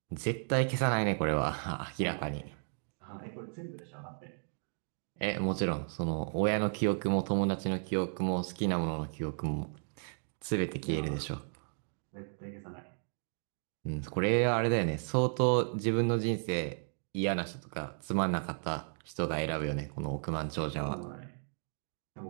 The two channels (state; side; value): silent; left; 55 dB below the other